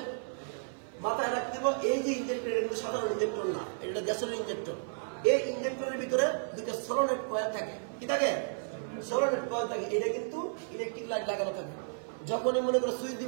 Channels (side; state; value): left; silent; 56 dB below the other